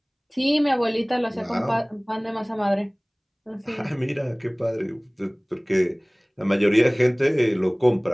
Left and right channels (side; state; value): both; identical; correlation 1.00